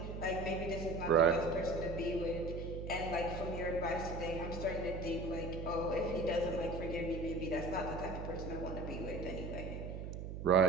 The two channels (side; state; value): right; noise; hum, 7 dB below the sound